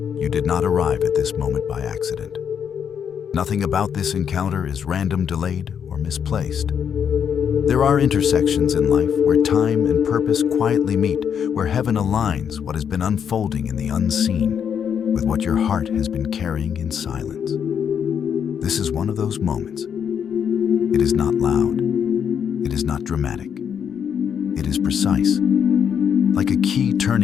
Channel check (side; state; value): right; quieter; 7.8 dB